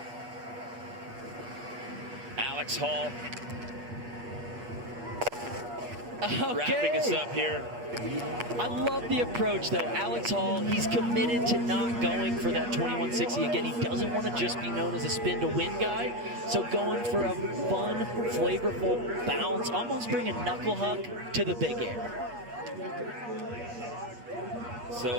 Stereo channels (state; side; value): late; left; 8.6 ms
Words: Alex Hall Okay. wrapping us up here. I love the approach, though. Alex Hall, he's committed to not going for that 2160. Again, he doesn't want to just be known as a spin-to-win guy. So going for a fun, flavorful bounce, almost bringing knuckle hug to the Big Air.